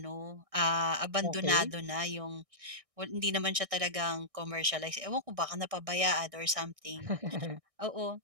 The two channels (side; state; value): left; late; 1.6 ms